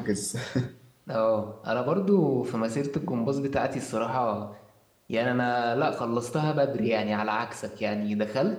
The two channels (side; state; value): both; identical; correlation 1.00